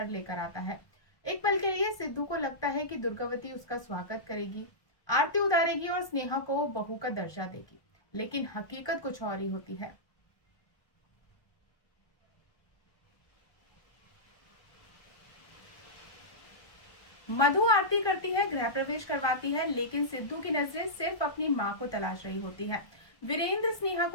लेकर आता है। एक पल के लिए सिद्धू को लगता है कि दुर्गावती उसका स्वागत करेगी, आरती उतारेगी और स्नेहा को बहू का दर्जा देगी, लेकिन हकीकत कुछ और ही होती है। मधु आरती करती है, गृह प्रवेश करवाती है, लेकिन सिद्धू की नजरें सिर्फ अपनी माँ को तलाश रही होती है। वीरेंद्र स्नेहा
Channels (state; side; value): late; right; 1.2 ms